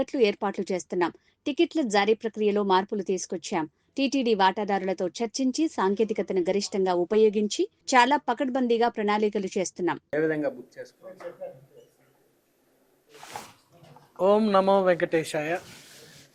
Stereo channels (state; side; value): identical; both; correlation 1.00